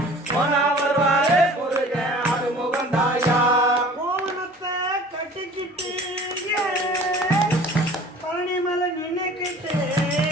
போனா வருவாரு முருகன் ஆறுமுகன் தாயா கோவணத்தை கட்டிக்கிட்டு பழனி மலை நினைக்கிட்டு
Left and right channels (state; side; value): normal; both; correlation 0.46